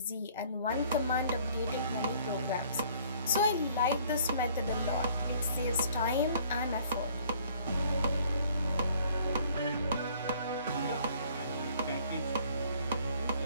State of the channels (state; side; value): inverted; both; correlation -0.58